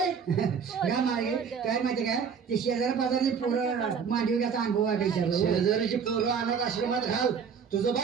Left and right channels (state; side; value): quieter; left; 6.5 dB